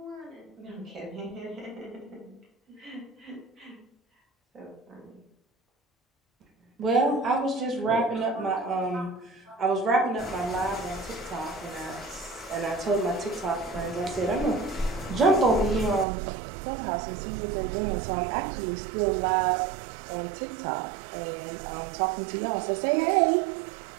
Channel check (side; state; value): left; drops out; at 16.1 s